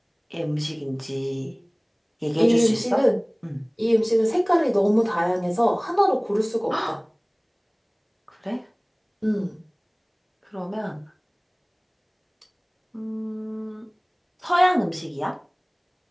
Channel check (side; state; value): both; identical; correlation 1.00